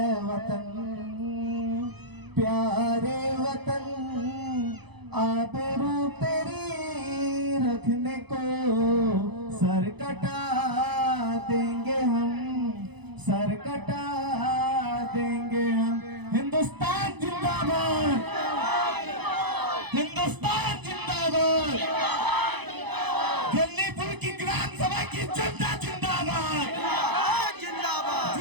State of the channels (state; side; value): late; left; 0.99 ms